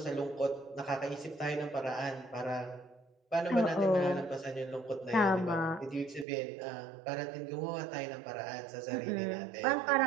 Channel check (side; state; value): left; drops out; at 6.2 s